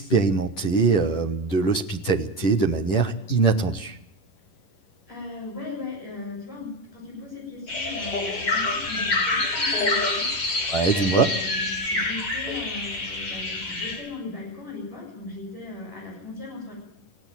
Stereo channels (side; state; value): right; late; 11 ms